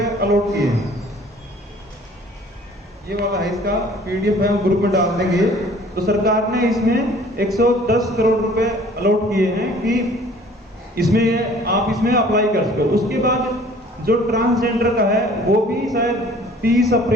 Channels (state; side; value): normal; both; correlation 0.52